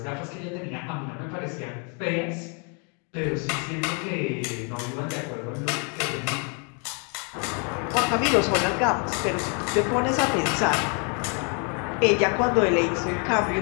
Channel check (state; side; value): quieter; right; 36.8 dB